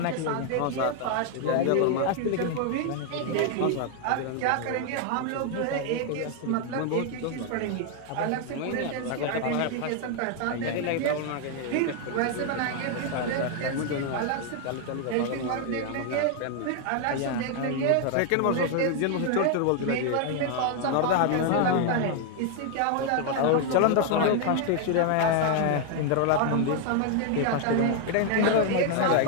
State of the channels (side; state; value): both; different; correlation 0.00